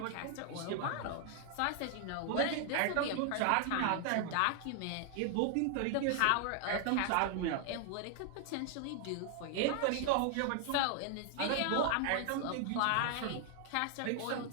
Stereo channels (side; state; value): both; different; correlation 0.00